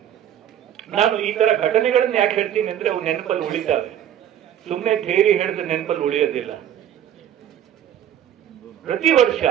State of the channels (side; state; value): left; quieter; 10.5 dB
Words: ನಾನು ಈ ತರ ಘಟನೆಗಳನ್ನ ಯಾಕೆ ಹೇಳ್ತೀನಿ ಅಂದ್ರೆ ಅವು ನೆನಪಲ್ಲಿ ಉಳಿತಾವೆ. ಸುಮ್ಮನೆ ಥಿಯರಿ ಹೇಳಿದ್ರೆ ನೆನಪಲ್ಲಿ ಉಳಿಯೋದಿಲ್ಲ. ಪ್ರತಿ ವರ್ಷ